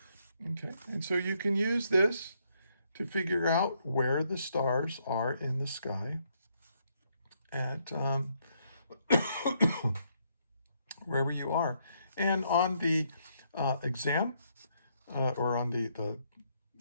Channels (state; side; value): inverted; both; correlation -0.73